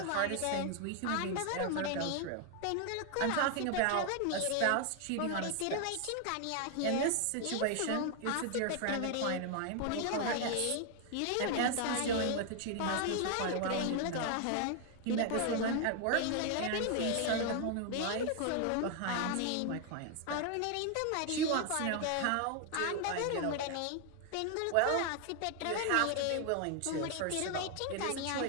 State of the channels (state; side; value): different; both; correlation 0.00